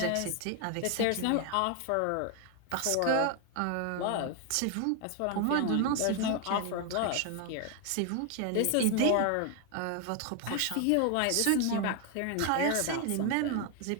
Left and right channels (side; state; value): both; different; correlation 0.01